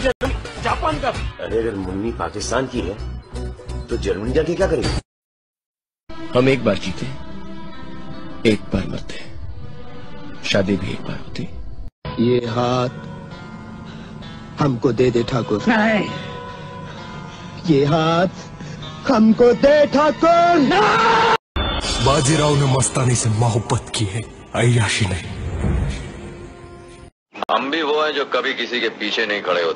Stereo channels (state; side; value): identical; both; correlation 1.00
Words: जर्मनी, जापान का. अरे अगर मुन्नी पाकिस्तान की है तो जर्मनी जाके क्या करेगी? हम एक बार जीते, एक बार मरते, शादी भी एक बार होती. ये हाथ हमको दे दे ठाकुर. नहीं, ये हाथ हमको दे ठाकुर. बाजीराव ने मस्तानी से मोहब्बत की है, अय्याशी नहीं. हम भी वो हैं जो कभी किसी के पीछे नहीं खड़े